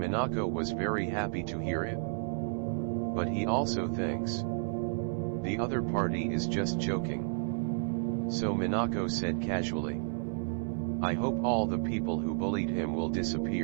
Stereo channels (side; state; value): left; silent; 56 dB below the other